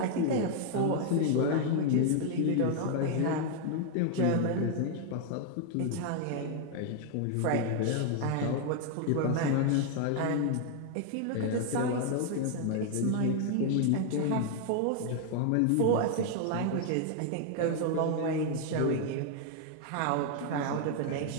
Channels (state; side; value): different; both; correlation 0.00